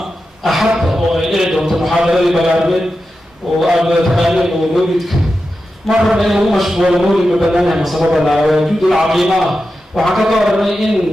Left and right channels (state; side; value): normal; both; correlation 0.91